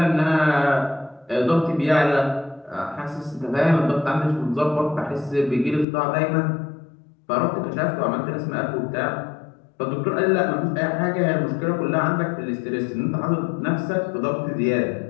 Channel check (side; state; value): right; drops out; at 5.9 s